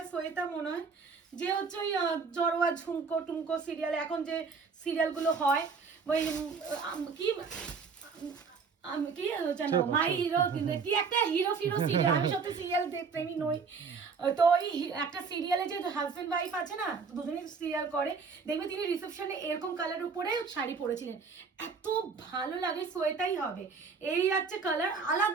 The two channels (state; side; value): quieter; left; 5.2 dB